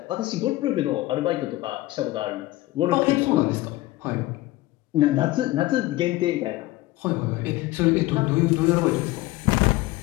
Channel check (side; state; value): right; quieter; 18.2 dB